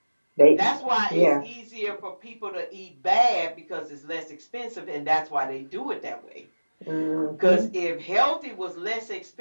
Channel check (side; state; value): both; inverted; correlation -1.00